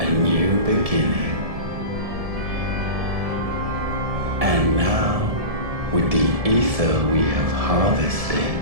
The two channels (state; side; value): late; left; 1.7 ms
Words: a new beginning. And now, with the ether we have harvested,